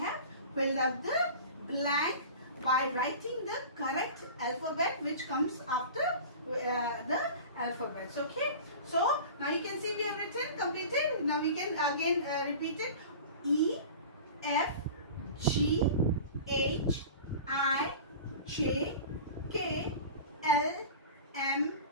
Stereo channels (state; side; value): inverted; both; correlation -0.36